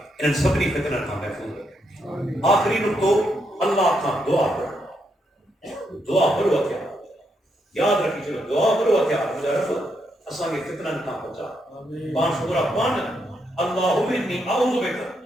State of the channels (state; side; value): normal; both; correlation 0.79